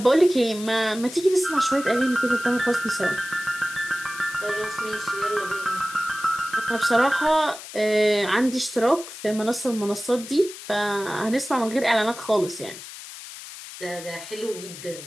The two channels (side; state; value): left; noise; hiss, 13 dB below the sound